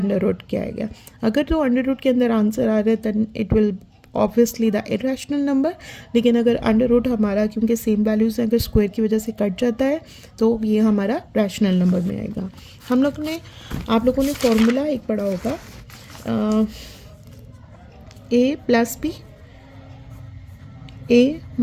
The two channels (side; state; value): both; identical; correlation 1.00